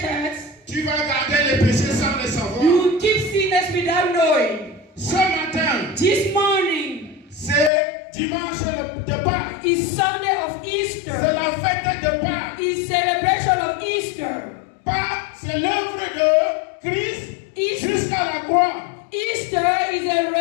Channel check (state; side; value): drops out; right; at 7.7 s